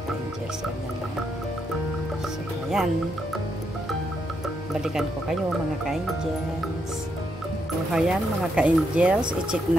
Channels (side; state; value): both; normal; correlation 0.79